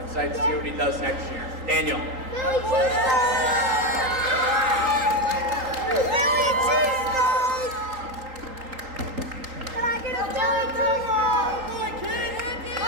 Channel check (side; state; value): left; late; 3.8 ms